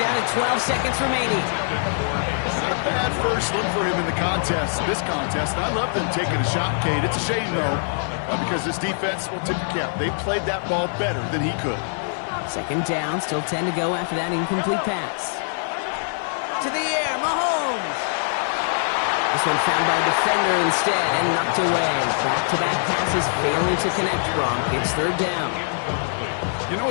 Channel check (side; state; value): right; silent; digital silence